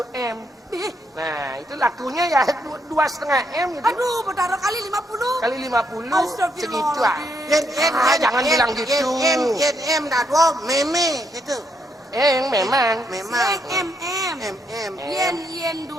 M. Ih, Nah, itu lakunya ya 2,5 M gitu. aduh, betaroh kali 50. Kali 50 Astagfirullah. segitu ah. Jangan bilang gitu. Yen dah dua meme itu. Memang. Memang. MM. MM. Yen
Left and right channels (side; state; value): both; normal; correlation 0.76